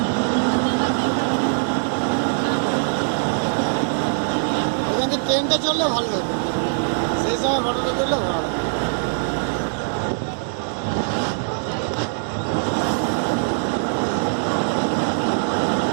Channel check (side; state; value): left; silent; digital silence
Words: এখান থেকে ট্রেনটা চললে ভালো হতো, সেই সময় ফটোটা তুললে ভালো হতো।